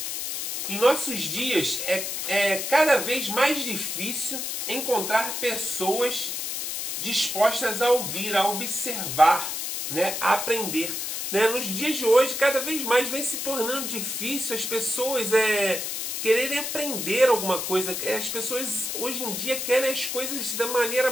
Em nossos dias é cada vez mais difícil encontrar pessoas dispostas a ouvir, a observar, a aprender. Nos dias de hoje, cada vez mais vem se tornando difícil as pessoas quererem aprender alguma coisa. As pessoas hoje em dia querem as coisas da maneira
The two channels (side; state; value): left; noise; hiss, 3 dB below the sound